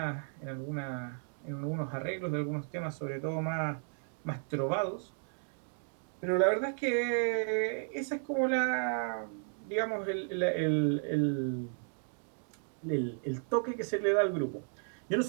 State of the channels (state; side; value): silent; left; 55 dB below the other